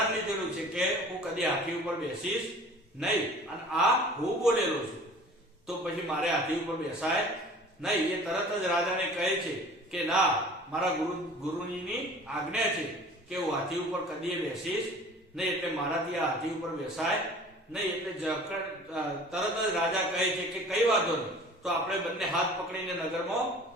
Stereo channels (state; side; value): normal; both; correlation 0.45